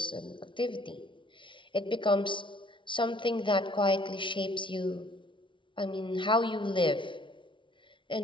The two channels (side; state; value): right; late; 0.24 ms